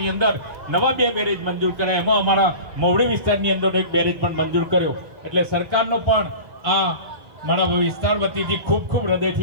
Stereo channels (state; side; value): late; left; 1.5 ms